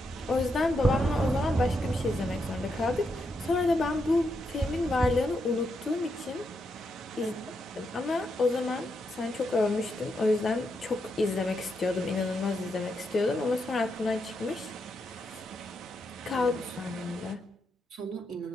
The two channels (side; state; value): both; normal; correlation 0.82